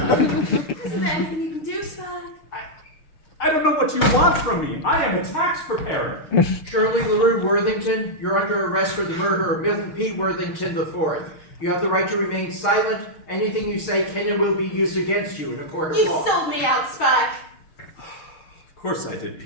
there anything you can do, Spike? I don't know what you want from me. I am a tax preparer. Shirley LaRue Worthington, you're under arrest for the murder of Milton P. Worthington IV. You have the right to remain silent. Anything you say can and will be used against you in a court of You law. sold me out, Spike. Of course I did,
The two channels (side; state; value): right; late; 6.5 ms